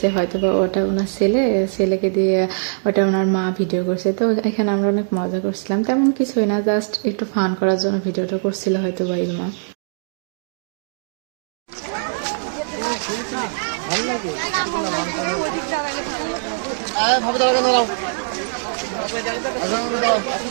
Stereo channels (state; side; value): silent; left; digital silence